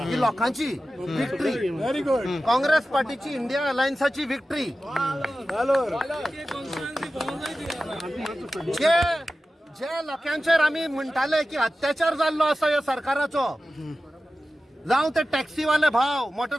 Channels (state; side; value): normal; both; correlation 0.94